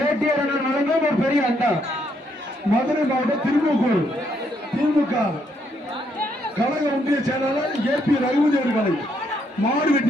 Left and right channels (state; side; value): normal; both; correlation 0.74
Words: வழங்கும் ஒரு பெரிய அண்டா மதுரை மாவட்டம் திருமூக்கூர் திமுக கழக ஒன்றிய செயலாளர் ஏபி ரகுபதி அவர்கள் காலை மாடு